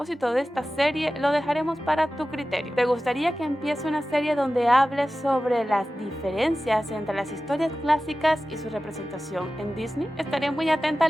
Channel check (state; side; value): normal; both; correlation 0.95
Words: de esta serie, lo dejaremos para tu criterio. ¿Te gustaría que empiece una serie donde hables sobre las diferencias entre las historias clásicas y su representación en Disney? Estaré muy atenta a